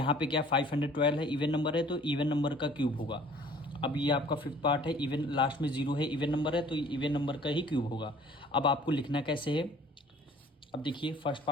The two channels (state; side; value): normal; both; correlation 0.53